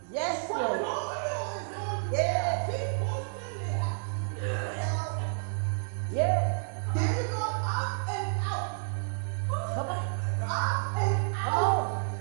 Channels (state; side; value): silent; left; digital silence